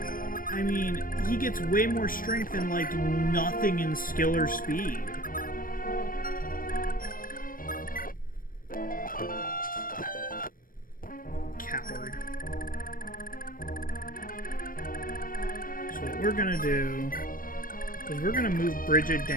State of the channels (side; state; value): right; late; 0.41 ms